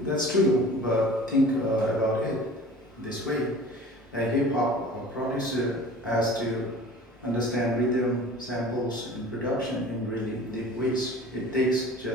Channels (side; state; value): both; normal; correlation 0.43